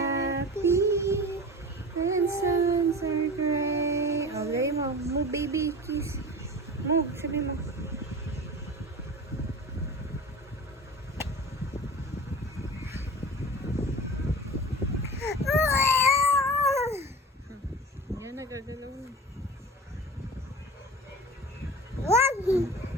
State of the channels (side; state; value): both; normal; correlation 0.34